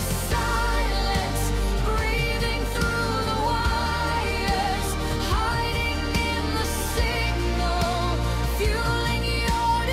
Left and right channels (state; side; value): identical; both; correlation 1.00